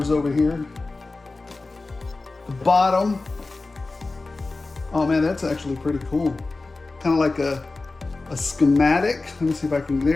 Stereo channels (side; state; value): right; quieter; 3.5 dB